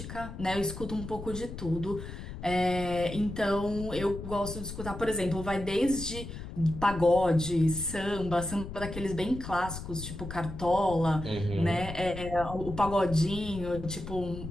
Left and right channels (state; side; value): noise; left; rumble, 10 dB below the sound